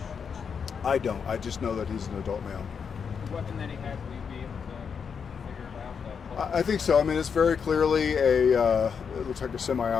I don't. I just know that he's an adult male. The weapon that he had, will you be able to figure it out? I think so. I mean, it's very clearly it looks like a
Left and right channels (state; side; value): quieter; right; 6.5 dB